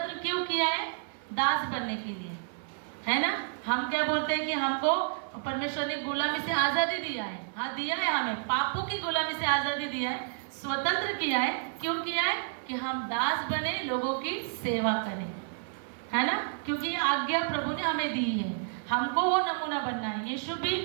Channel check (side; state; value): left; silent; 58 dB below the other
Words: क्यों किया है, दास बनने के लिए, है ना। हम क्या बोलते हैं कि हमको परमेश्वर ने गुलामी से आज़ादी दिया है। हाँ, दिया है, हमें पापों की गुलामी से आज़ादी दिया है, स्वतंत्र किया है। क्यों किया है, कि हम दास बने, लोगों की सेवा करें, है ना। क्योंकि ये आज्ञा प्रभु ने हमें दी है, हमको वो नमूना बनना है। यीशु भी